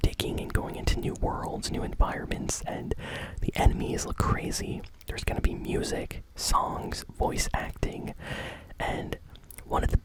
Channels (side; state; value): both; identical; correlation 1.00